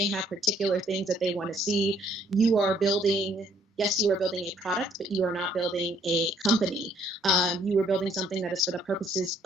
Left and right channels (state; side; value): normal; both; correlation 0.63